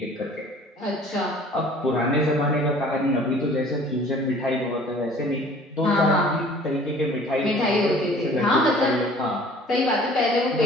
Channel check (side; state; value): both; normal; correlation 0.50